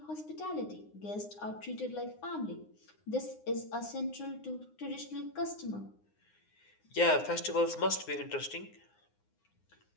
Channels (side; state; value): right; late; 9.7 ms